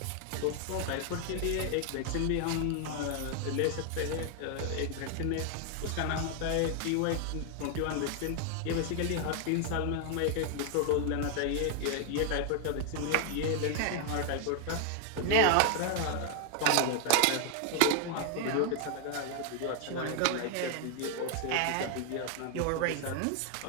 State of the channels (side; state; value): both; different; correlation 0.00